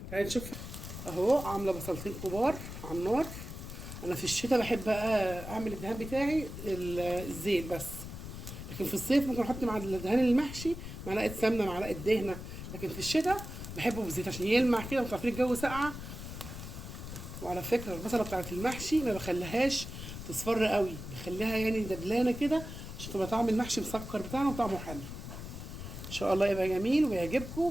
تعالي نشوف. اهو عامله بصلتين كبار على النار. انا في الشتاء بحب بقى اعمل الدهان بتاعي الزيت بس، لكن في الصيف ممكن احط مع الدهان المحشي معلقه سمنه معلقه دهنه، لكن في الشتاء بحبه بالزيت عشان يلمع كده. وانتوا عارفين الجو ساقعه. وعلى فكره البصله بتاعت المحشي ما بخليهاش تصفر قوي، بخليها يعني دبلانه كده عشان تبقى طعم المحشي مسكر بتاعنا وطعمه حلو. ان شاء الله يبقى جميل ويعجبكم.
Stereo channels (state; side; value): noise; left; rumble, 9 dB below the sound